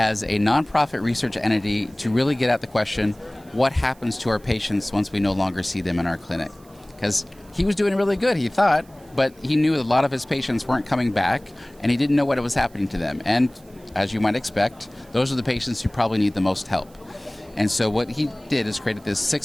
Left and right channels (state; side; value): noise; right; hiss, 29 dB below the sound